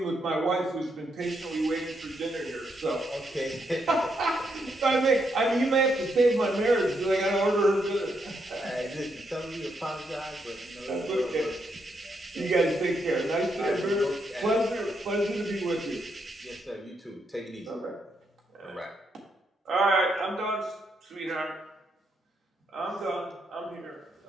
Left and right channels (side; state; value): both; normal; correlation 0.78